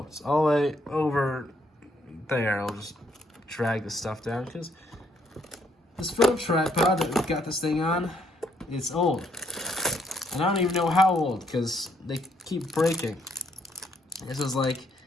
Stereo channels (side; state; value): both; normal; correlation 0.72